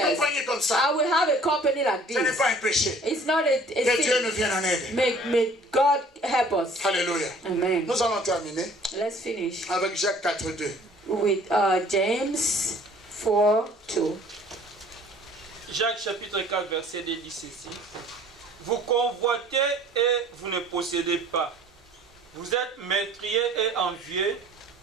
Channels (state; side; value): normal; both; correlation 0.53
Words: compagnie comme ça. I will have a company like Ce n'est this. pas un péché. It's not a Que Dieu nous sin. vienne en aide. May God help us. Alléluia. Amen. Nous allons terminer Let's finish avec Jacques 4:2. with James 4:2. Jacques chapitre 4 verset 2 dit ceci. Vous convoitez et vous ne possédez pas. Vous êtes meurtriers et envieux